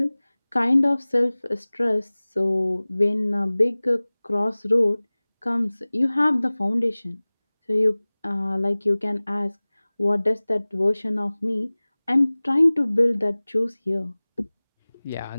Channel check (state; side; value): inverted; both; correlation -1.00